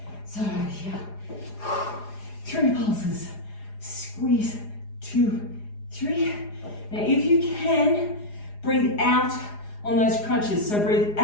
So here, 3 pulses, squeeze, 2, 3. Now if you can, breathe out on those crunches. So breathe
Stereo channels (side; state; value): right; late; 4.9 ms